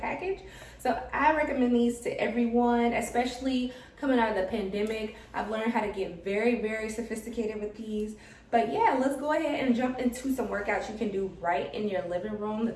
So I recommend these to everyone, especially coming out of the pandemic. I've learned how to get very, very sophisticated with these. But yeah, let's go ahead and jump into some workouts you can do right in your living room, the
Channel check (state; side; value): identical; both; correlation 1.00